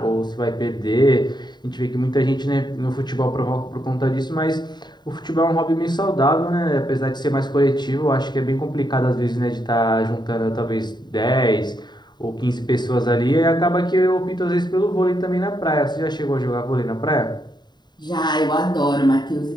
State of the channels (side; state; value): right; late; 0.21 ms